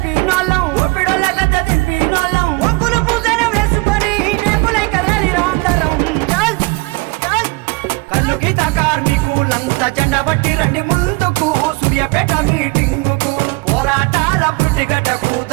ఒక్కులు పూజన వేసుకొని నేపులై కదలిరా అందరం కల్లు గీత కార్మికులంతా జెండా పట్టి రండి ముందుకు సూర్యాపేట మీటింగుకు పోరాటాల పురిటిగడ్డకు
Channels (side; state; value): left; quieter; 25.5 dB